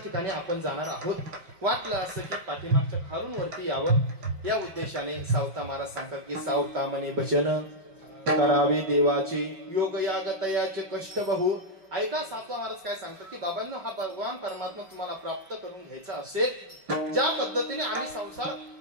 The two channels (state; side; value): late; left; 5.3 ms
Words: ठिकाणी आपण जाणार आहोत. वाटलं असं की पाठीमागच्या खालून वरती यावं, या उद्देशाने सावता महाराज सांगतात की सावता मने भजन करावे देवाचे, योग याग तयाचे कष्ट बहु. ऐका सावता महाराज काय सांगतात की बाबांनो, हा भगवान परमात्मा तुम्हाला प्राप्त करून घ्यायचा असेल, ज्या पद्धतीने आम्ही संसार